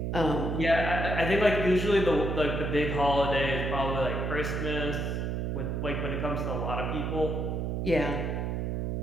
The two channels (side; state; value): right; noise; hum, 1 dB below the sound